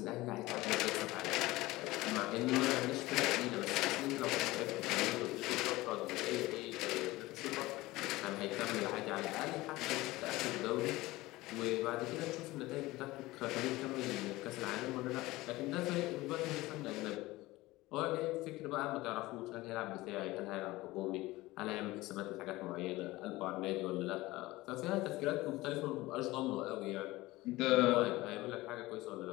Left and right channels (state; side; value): quieter; right; 19.3 dB